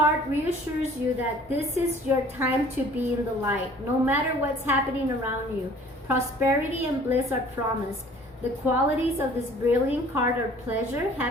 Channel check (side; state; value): both; normal; correlation 0.52